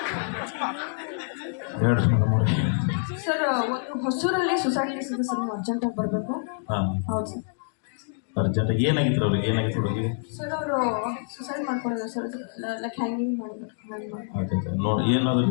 ಹೇಳ್ರಿ ಮೇಡಮ್ ಅವ್ರಿ ಸರ್ ಒಂದು ಹೊಸೂರಲ್ಲಿ ಸೊಸೈಟಿ ಇದೆ ಸರ್ ನೀವು ಅರ್ಜೆಂಟಾಗಿ ಬರಬೇಕು ಹಾಂ ಹೌದು ಸರ್ ಅರ್ಜೆಂಟ್ ಏನಾಗಿತ್ತು ಅವ್ರಿಗೆ ಸರ್ ಅವರು ಸುಸೈಡ್ ಮಾಡ್ಕೊಂಡಿದ್ದಾರೆ ಸರ್ ಲೈಕ್ ಹ್ಯಾಂಗಿಂಗ್ ಮಾಡಿದ್ರು ನೋಡಿ ಏನು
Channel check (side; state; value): right; silent; digital silence